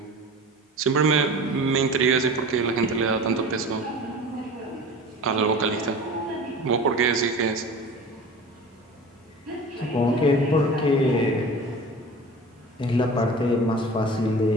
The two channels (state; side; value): normal; both; correlation 0.37